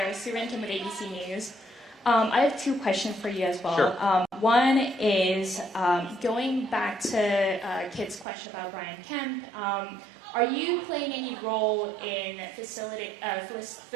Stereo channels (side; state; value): left; drops out; at 8.2 s